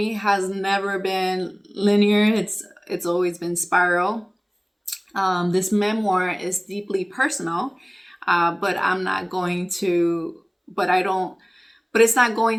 has never been linear. It's always been spiral. This memoir is deeply personal, but I'm not going to, but I don't, but it's not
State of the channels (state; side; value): identical; both; correlation 1.00